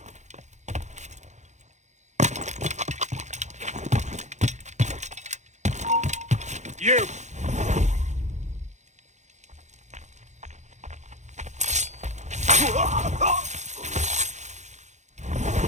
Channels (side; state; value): left; late; 0.34 ms